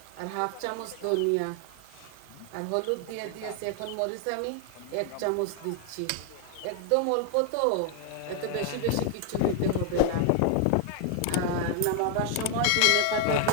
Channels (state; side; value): different; both; correlation 0.00